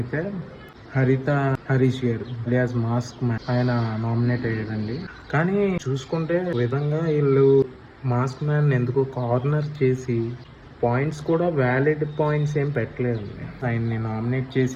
హరీష్ గారు అలియాస్ మాస్క్ మ్యాన్ ఆయన నామినేట్ అయ్యారండి. కానీ చూసుకుంటే విధంగా వీళ్ళు మాస్క్ మ్యాన్ ఎందుకో కార్నర్ చేసి పాయింట్స్ కూడా వ్యాలిడ్ పాయింట్స్ ఏం పెట్టలేదండి. ఆయన్ని నామినేట్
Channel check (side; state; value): both; identical; correlation 1.00